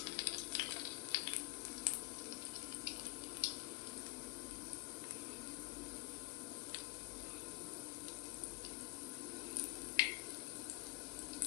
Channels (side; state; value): right; quieter; 21.6 dB